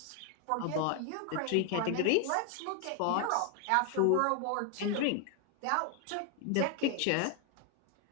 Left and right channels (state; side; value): different; both; correlation 0.01